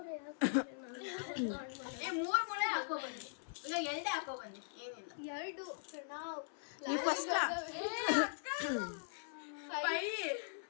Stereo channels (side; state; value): right; silent; 51 dB below the other